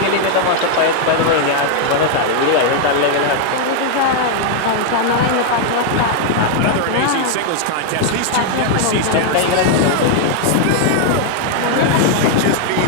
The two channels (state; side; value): different; both; correlation 0.00